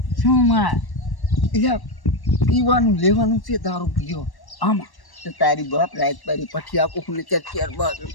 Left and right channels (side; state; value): right; late; 1.1 ms